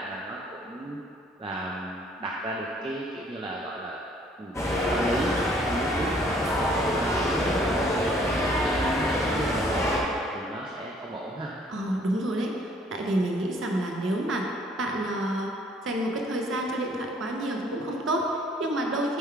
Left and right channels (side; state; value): both; normal; correlation 0.60